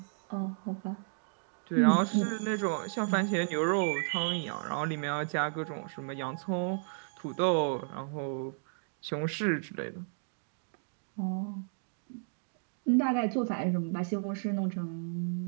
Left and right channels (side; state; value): left; silent; digital silence